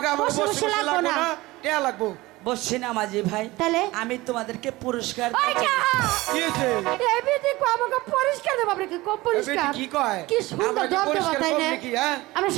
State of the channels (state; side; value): quieter; left; 19.9 dB